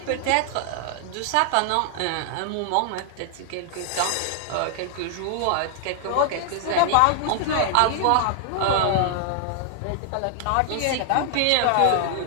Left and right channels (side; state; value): both; different; correlation 0.00